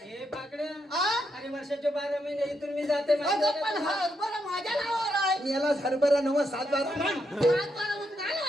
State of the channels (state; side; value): normal; both; correlation 0.80